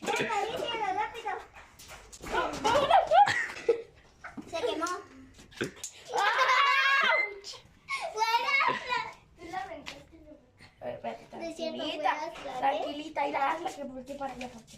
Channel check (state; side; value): identical; both; correlation 1.00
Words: Acaríciala, rápido. Se quemó. De cierto, voy a hacer, Tranquilita, ir a hazla que voltee para allá